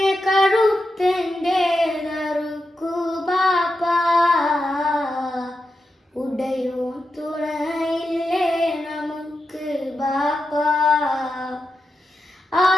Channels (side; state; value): both; normal; correlation 0.88